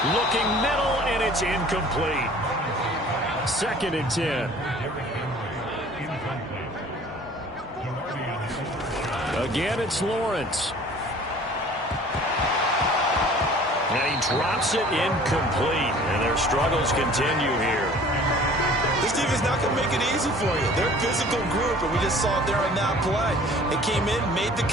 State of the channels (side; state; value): both; normal; correlation 0.49